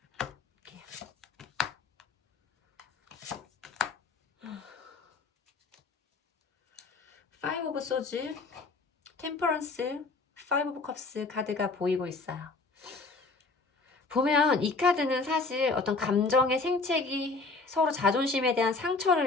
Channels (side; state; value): right; quieter; 3.9 dB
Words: 볼게요. 오브 소즈, 템퍼런스, 파이브 오브 컵스 카드가 보이고 있어요. 보면 이 카드는 사실 어떤 감정의 생채기, 서로 자존심에 대한